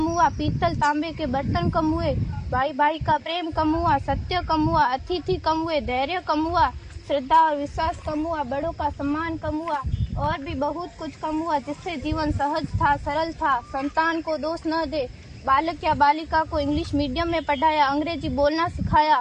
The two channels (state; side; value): identical; both; correlation 1.00